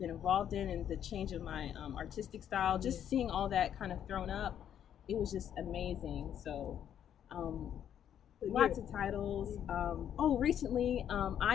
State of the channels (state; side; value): quieter; right; 9.7 dB